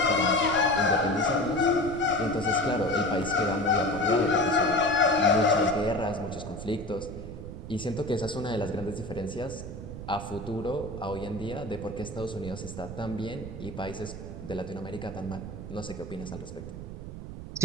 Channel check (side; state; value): right; noise; rumble, 9 dB below the sound